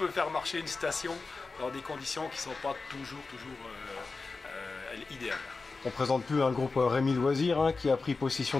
faire marcher une station dans des conditions qui ne sont pas toujours idéales. On présente plus un groupe Rémi Loisir qui a pris possession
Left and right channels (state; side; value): quieter; right; 4.0 dB